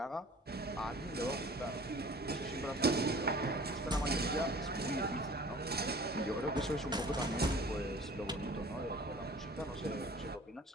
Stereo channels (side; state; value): both; normal; correlation 0.46